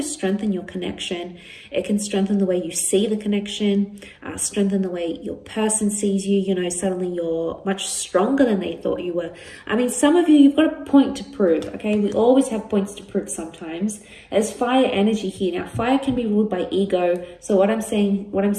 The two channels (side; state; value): both; identical; correlation 1.00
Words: strengthen your connection. It can strengthen the way you see the connection, strengthen the way your person sees you. You know, suddenly you're much stronger than they thought you were. I mean, some of you, you've got a point to prove, okay? We always have points to prove sometimes. There's fire energy here. Now, fire can be ruled by ego. So what I'm